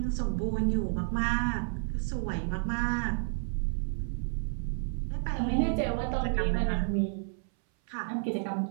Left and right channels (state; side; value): silent; left; 57 dB below the other